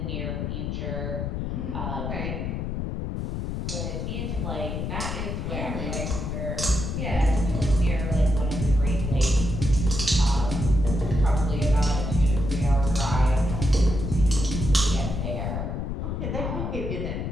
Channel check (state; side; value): noise; left; rumble, 3 dB below the sound